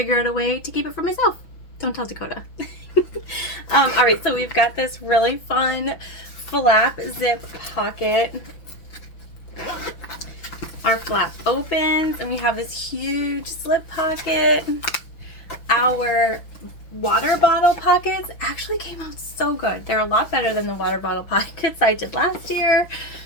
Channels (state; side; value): late; right; 5.9 ms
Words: out a way to keep it for myself. Don't tell Dakota. All right, so we've got this really fun flap zip pocket. Our flap opens, and we have this huge slip pocket. Our water bottle pockets actually came out so good. They're a lot better than the water bottle pockets I did last year.